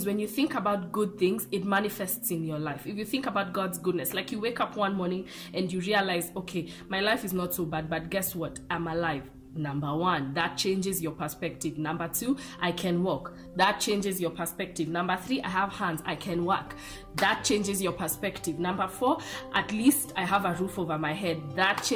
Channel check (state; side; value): identical; both; correlation 1.00